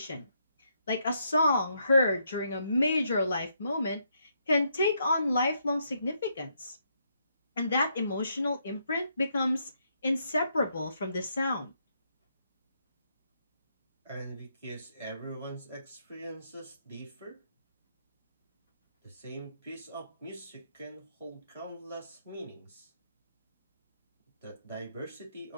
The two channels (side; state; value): both; inverted; correlation -0.76